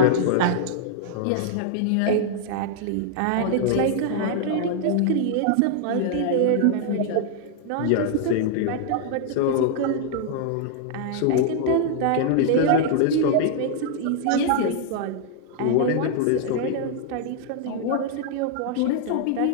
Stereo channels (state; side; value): different; both; correlation -0.01